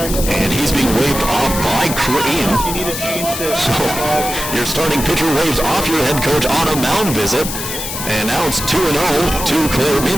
And he's being waved off by Crane. So your starting pitcher waves off your head coach on a mound visit. And now it's 2-0 to Claire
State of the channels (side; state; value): left; noise; hiss, 6 dB below the sound